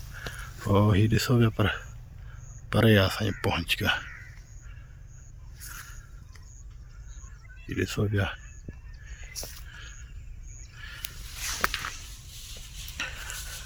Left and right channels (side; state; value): both; identical; correlation 1.00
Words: ओ ही ॾिसो पिया, पर परे आहे असांजे पहुच खां। ही ॾिसो पिया,